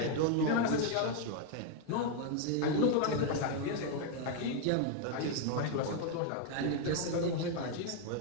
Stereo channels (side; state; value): both; different; correlation 0.01